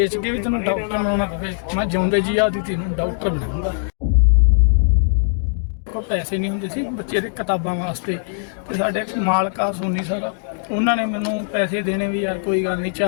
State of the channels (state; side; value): silent; right; digital silence